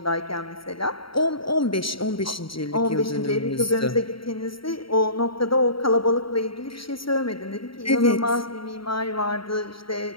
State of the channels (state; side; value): late; right; 0.74 ms